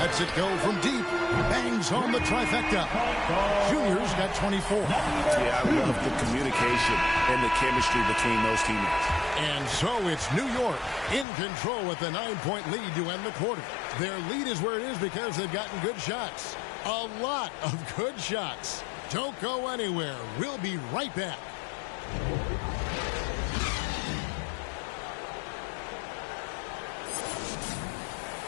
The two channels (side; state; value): right; drops out; at 11.2 s